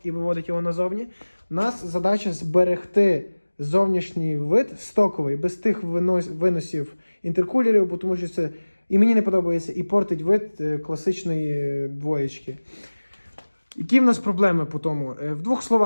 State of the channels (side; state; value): both; inverted; correlation -1.00